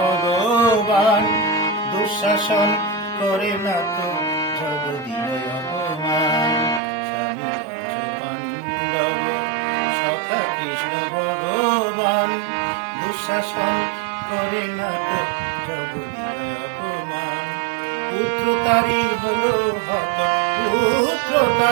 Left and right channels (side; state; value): left; drops out; at 6.8 s